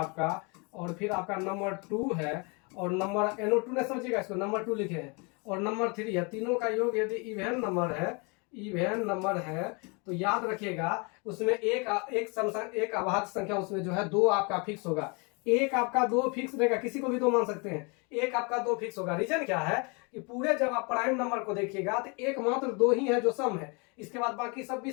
और फिर आपका नंबर 2 है, और नंबर NO2 ने समझिएगा इसको, नंबर 2 लिखे हैं, और नंबर 3 है। तीनों का योग यदि इवेन नंबर है, इवेन नंबर है, तो याद रखिएगा उसमें एक अभाज्य संख्या उसमें जो है 2 आपका फिक्स होगा। एक आपका 2 फिक्स रहेगा, किसी को भी 2 मान सकते हैं। एक आपका 2 फिक्स होगा। रीजन क्या है कि पूरे जब आप प्राइम नंबर को देखिएगा तो एकमात्र 2 ही है जो सम है, इसके बाद बाकी सब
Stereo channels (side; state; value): right; quieter; 31.5 dB